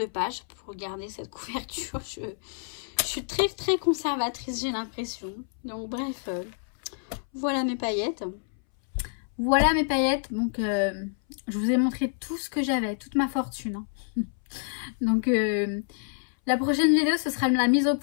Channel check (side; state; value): right; silent; 59 dB below the other